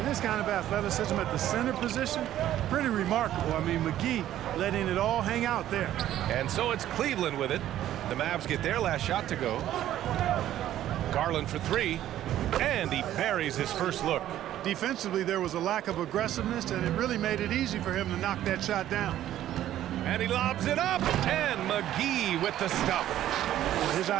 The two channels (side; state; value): left; quieter; 12.5 dB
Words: this kind of athleticism at the center position, pretty remarkable. I mean, McGee letting it all hang out there. And so it's Cleveland with it. The Mavs get their last shot to go. Garland for 3, and he buries his first look. Defensively, there was a lack of aggressiveness, and it really made it easy for him to knock that shot down. And he lobs it up, and McGee with the stuff. His